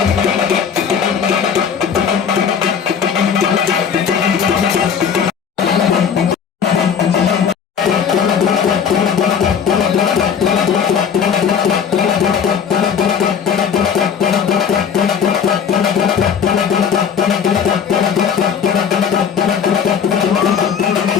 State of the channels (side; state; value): right; quieter; 7.3 dB